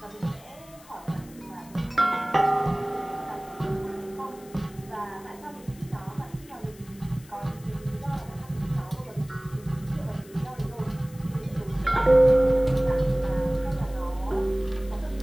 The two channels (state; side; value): noise; left; hiss, 23 dB below the sound